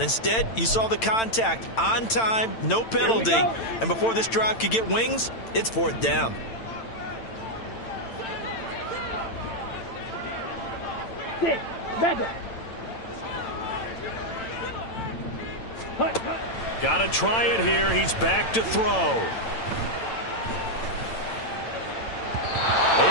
you saw the contact on time, no penalty, and before this drive could get wings, it's 4th down. Got to try it here. He's back to throw.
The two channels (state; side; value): late; right; 8.9 ms